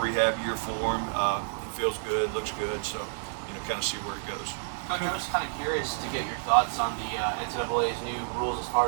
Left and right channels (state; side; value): silent; left; 56 dB below the other